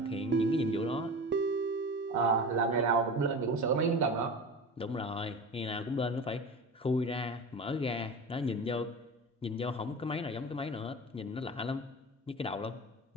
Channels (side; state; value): both; normal; correlation 0.32